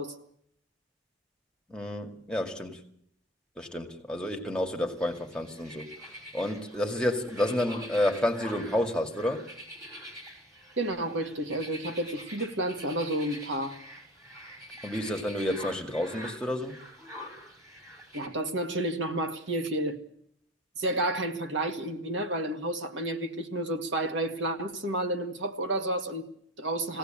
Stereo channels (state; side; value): normal; both; correlation 0.35